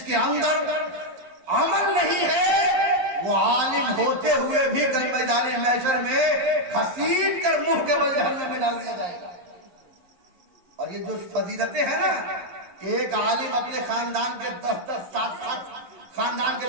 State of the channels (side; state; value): left; late; 11 ms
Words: کے اندر عمل نہیں ہے, وہ عالم ہوتے ہوئے بھی کل میدان محشر میں گھسیٹ کر منہ کے بل جہنم میں ڈال دیا جائے گا. اور یہ جو فضیلتیں ہیں نا, ایک عالم اپنے خاندان کے 10-10 7 خاندان